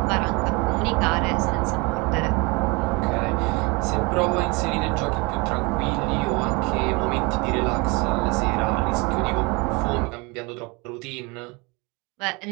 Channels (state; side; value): quieter; left; 27.6 dB